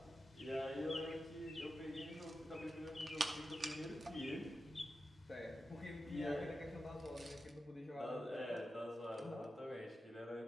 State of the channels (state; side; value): normal; both; correlation 0.91